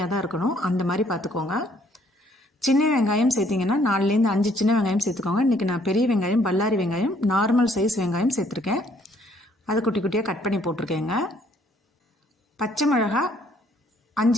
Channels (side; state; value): both; normal; correlation 0.64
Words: தான் இருக்கணும், அந்த மாதிரி பார்த்துக்கோங்க. சின்ன வெங்காயம் சேர்த்திங்கன்னா 4லேருந்து 5 சின்ன வெங்காயம் சேர்த்துக்கோங்க. இன்றைக்கி நான் பெரிய வெங்காயம், பல்லாரி வெங்காயம், நார்மல் சைஸ் வெங்காயம் சேர்த்துருக்கேன். அதை குட்டி குட்டியாக கட் பண்ணி போட்டிருக்கேங்க. பச்சை மிளகா